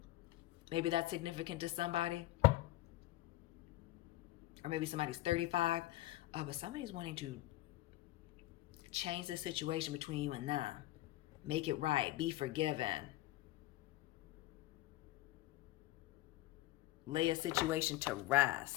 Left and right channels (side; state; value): right; quieter; 16.9 dB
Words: Maybe that's significant to somebody. Or maybe somebody's 35. But somebody's wanting to change the situation between you and them. Make it right. Be forgiven. Lay a situation to